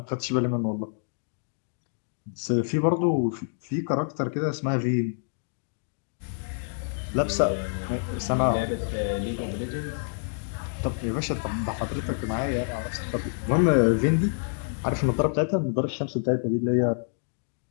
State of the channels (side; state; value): right; silent; digital silence